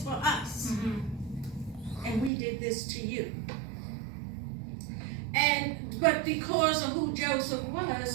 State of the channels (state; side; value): drops out; left; at 2.3 s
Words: us? And we did this to you. But because of who Joseph